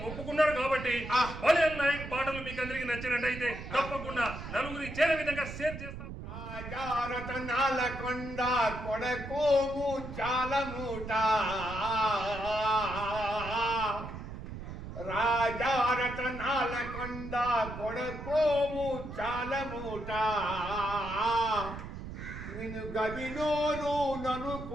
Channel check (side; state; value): right; noise; rumble, 10 dB below the sound